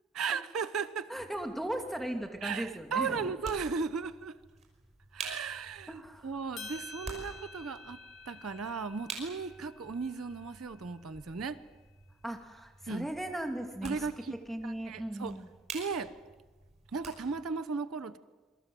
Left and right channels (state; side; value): quieter; left; 3.6 dB